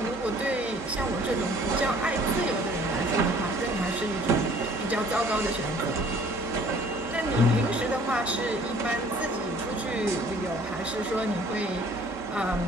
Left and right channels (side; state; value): both; normal; correlation 0.54